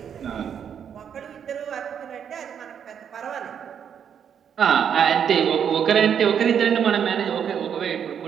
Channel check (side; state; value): left; quieter; 8.1 dB